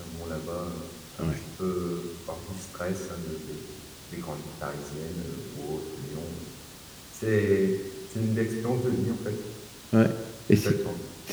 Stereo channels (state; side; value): identical; both; correlation 1.00